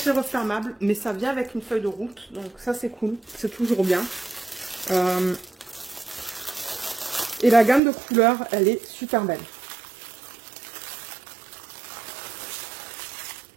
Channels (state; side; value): drops out; left; at 7.8 s